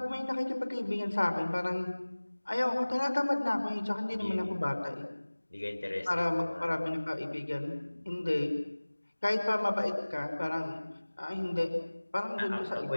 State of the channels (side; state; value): both; inverted; correlation -1.00